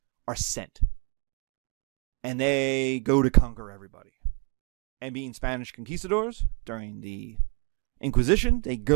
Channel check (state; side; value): quieter; left; 32.3 dB